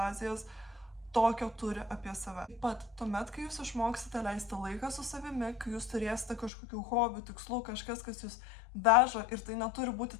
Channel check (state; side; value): drops out; right; at 6.5 s